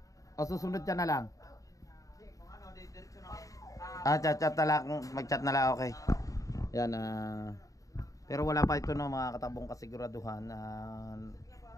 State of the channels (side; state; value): right; late; 0.16 ms